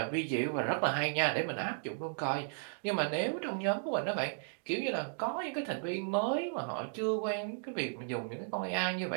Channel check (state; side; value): silent; left; digital silence